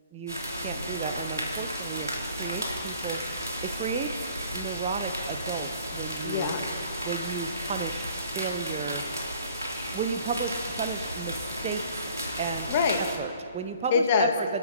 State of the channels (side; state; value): both; inverted; correlation -0.54